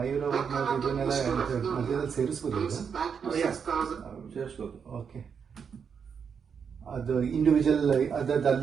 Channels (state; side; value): quieter; left; 6.7 dB